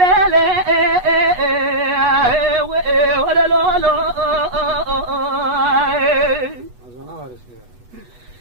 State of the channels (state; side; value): late; left; 8.2 ms